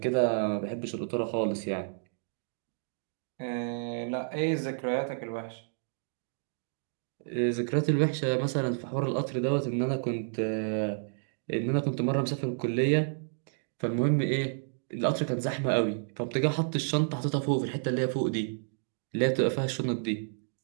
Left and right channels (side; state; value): left; silent; digital silence